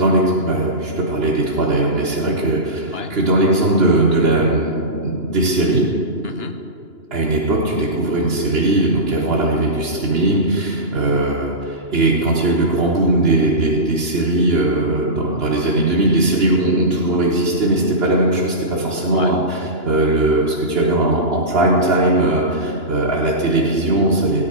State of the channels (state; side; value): late; left; 2.9 ms